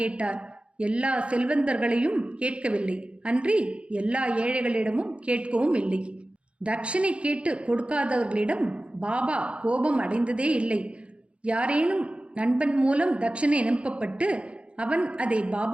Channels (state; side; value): late; left; 0.059 ms